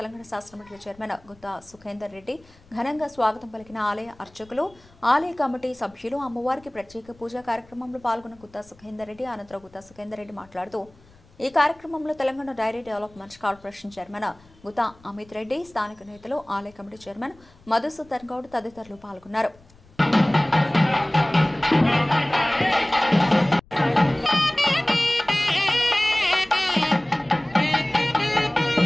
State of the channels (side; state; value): left; noise; rumble, 27 dB below the sound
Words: శాసనమండలి చైర్మన్ గుత్తా సుఖేందర్ రెడ్డి ఘనంగా స్వాగతం పలికిన ఆలయ అర్చకులు, ఆలయ కమిటీ సభ్యులు అమ్మవారికి ప్రత్యేక పూజా కార్యక్రమంలో పాల్గొన్న గుత్తా సుఖేందర్ రెడ్డి అనంతరం గుత్తా సుఖేందర్ రెడ్డి మాట్లాడుతూ ఈ కార్యక్రమంలో Telangana dairy development corporation chairman Gutha Amith Reddy, స్థానిక నేతలు, ఆలయ కమిటీ చైర్మన్ మధుసూదన్ గౌడ్ తదితరులు పాల్గొన్నారు.